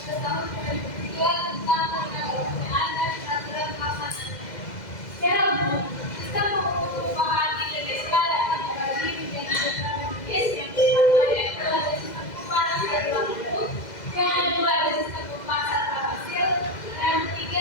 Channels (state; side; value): late; right; 2.0 ms